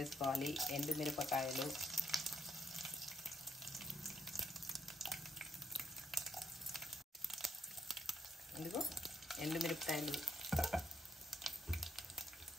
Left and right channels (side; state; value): both; normal; correlation 0.74